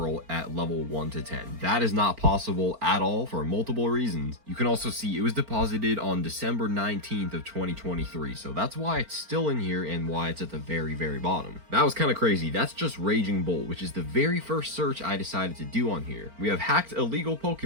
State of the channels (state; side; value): late; left; 4.4 ms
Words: at level 1 to 10. That is not possible at all for multiple reasons. You can also see it was deposited on December 19th of 2023, so that's why it's still in here and why it's at the very bottom. That was kind of crazy. That's just Raging Bolt, which is the very first search I decided to do on here. We have hacked illegal